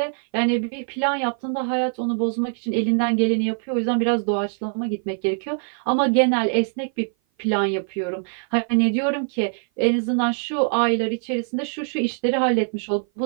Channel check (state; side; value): silent; left; 57 dB below the other